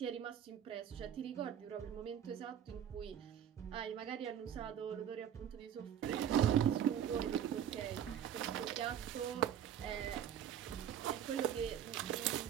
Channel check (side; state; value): left; quieter; 9.7 dB